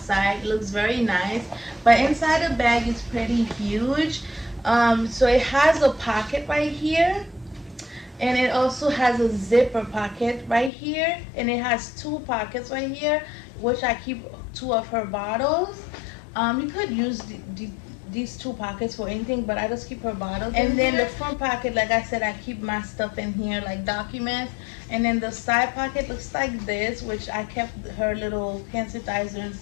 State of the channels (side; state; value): right; drops out; at 10.7 s